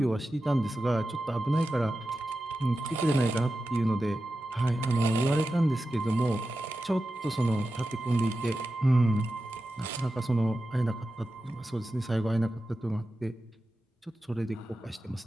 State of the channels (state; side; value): normal; both; correlation 0.92